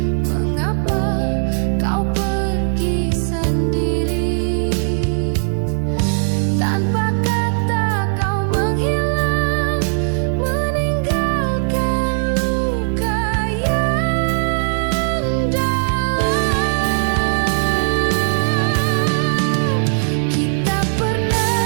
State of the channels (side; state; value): left; silent; digital silence